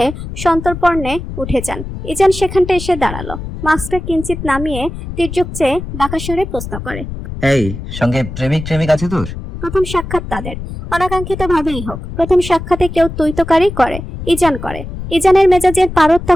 সন্তর্পণে উঠে যান। ইজান সেখানটা এসে দাঁড়ালো। মাস্কটা কিঞ্চিত নামিয়ে তির্যক চেয়ে বাঁকা স্বরে প্রশ্ন করে, এই সঙ্গে প্রেমিক আছে তোর? প্রথম সাক্ষাৎ তাদের। অনাকাঙ্ক্ষিত ভাবেই হোক, প্রথম সাক্ষাতে কেউ তুইতকারী করে। ইজান করে। ইজানের মেজাজের পারদ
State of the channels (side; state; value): left; noise; rumble, 9 dB below the sound